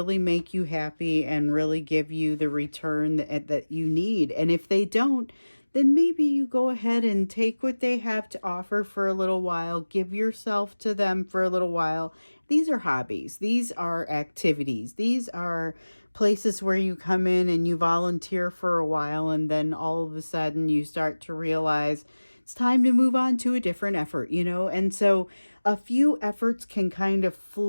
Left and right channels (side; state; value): both; inverted; correlation -1.00